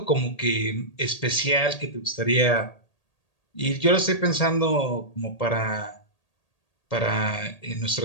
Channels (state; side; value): late; right; 1.8 ms